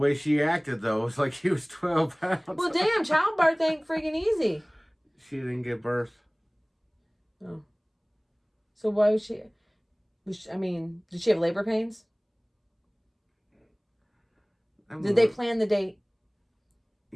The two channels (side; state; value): both; identical; correlation 1.00